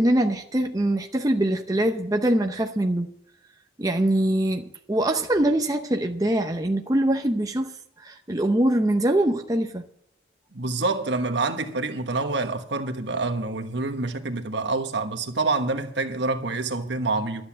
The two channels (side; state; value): both; normal; correlation 0.60